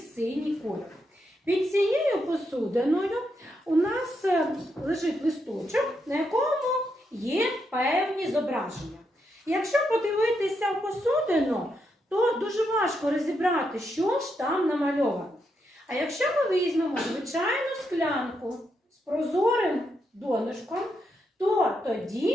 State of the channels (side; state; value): both; normal; correlation 0.81